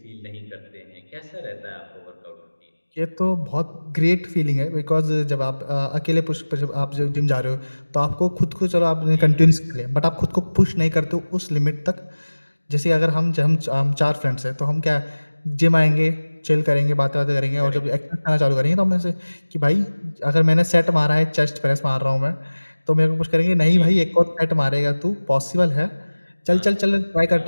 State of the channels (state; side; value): inverted; both; correlation -1.00